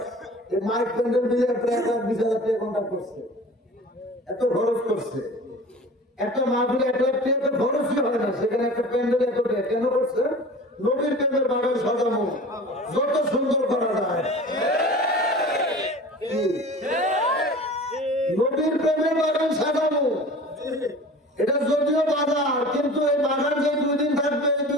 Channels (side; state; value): both; normal; correlation 0.40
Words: মাইক প্যান্ডেল মিলে প্রায় 20,000 টাকা কন্ট্যাক্ট করছে, এত খরচ করছে। একটা মাহফিলে 1 লাখ টাকা খরচই হয় না, সেখানে একটা প্যান্ডেল এত টাকা কেন করছে? নবীর প্রেমের বাগান সাজানো যত সুন্দর করা যায়, নবীর প্রেমের বাগান সাজানো, এটা যদিও বাজার, কিন্তু এই বাগান যে 2 দিন থাকবে, 2